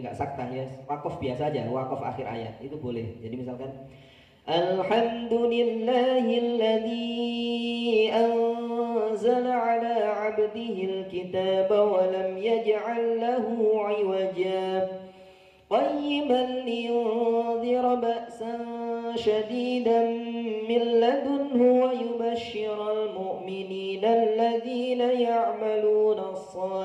nggak sakta ya, wakaf biasa aja, wakaf akhir ayat itu boleh. Jadi misalkan Alhamdulillahilladzi anzala ala 'abdihil kitaba wa lam yaj'al lahu 'iwaja qayyiman liyunzira ba'san syadidan min ladunhu wa yubashshiral mu'minina alladhina ya'maluna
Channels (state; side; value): identical; both; correlation 1.00